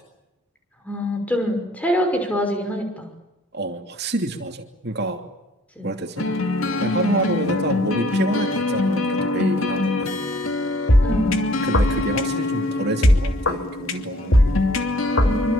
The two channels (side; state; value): both; normal; correlation 0.58